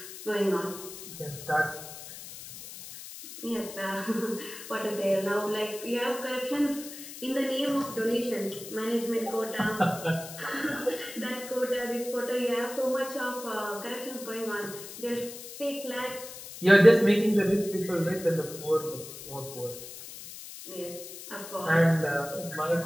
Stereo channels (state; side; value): noise; left; hiss, 12 dB below the sound